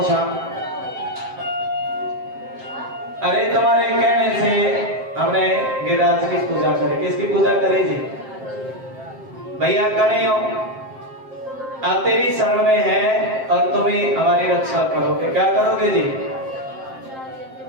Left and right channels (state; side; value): late; left; 7.6 ms